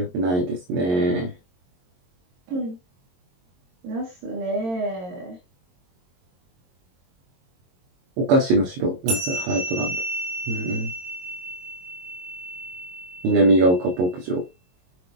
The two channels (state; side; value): late; left; 22 ms